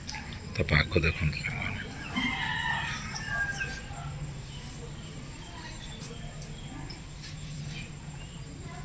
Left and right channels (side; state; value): both; identical; correlation 1.00